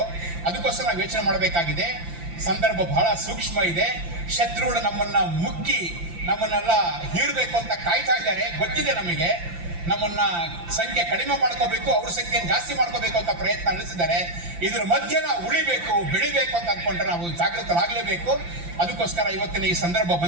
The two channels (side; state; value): left; late; 5.8 ms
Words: ಅದಕ್ಕೋಸ್ಕರ ನಾವು ಯೋಚನೆ ಮಾಡಬೇಕಾಗಿದೆ. ಸಂದರ್ಭ ಬಹಳ ಸೂಕ್ಷ್ಮ ಇದೆ. ಶತ್ರುಗಳು ನಮ್ಮನ್ನ ಮುಕ್ಕಿ ನಮ್ಮನ್ನೆಲ್ಲ ಹೀರಬೇಕು ಅಂತ ಕಾಯ್ತಾ ಇದ್ದಾರೆ, ಗೊತ್ತಿದೆ ನಮಗೆ. ನಮ್ಮನ್ನ ಸಂಖ್ಯೆ ಕಡಿಮೆ ಮಾಡ್ಕೋಬೇಕು, ಅವ್ರ ಸಂಖ್ಯೆ ಜಾಸ್ತಿ ಮಾಡ್ಕೋಬೇಕು ಅಂತ ಪ್ರಯತ್ನ ನಡೆಸಿದ್ದಾರೆ. ಇದ್ರ ಮಧ್ಯೆ ನಾವು ಉಳಿಬೇಕು, ಬೆಳಿಬೇಕು ಅಂತ ಅನ್ಕೊಂಡ್ರೆ ನಾವು ಜಾಗೃತರಾಗಲೇಬೇಕು. ಅದಕ್ಕೋಸ್ಕರ ಇವತ್ತಿನ ಈ ಸಂದರ್ಭ